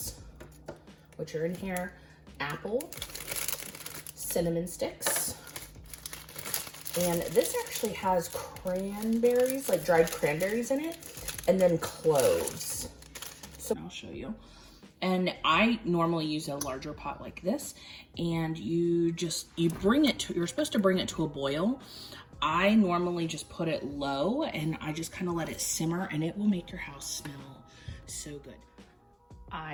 which are in here, apple, cinnamon sticks, and this actually has cranberries, like dried cranberries in it, and then cloves. So I'll show you. And I normally use a larger pot like this, and you're supposed to bring it to a boil. I normally just put it low and I just kind of let it simmer, and it will make your house smell so good.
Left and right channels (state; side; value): identical; both; correlation 1.00